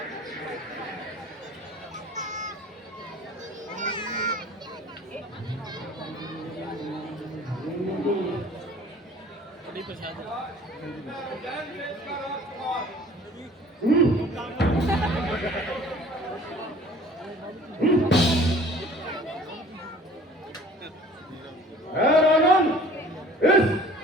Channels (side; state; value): both; normal; correlation 0.48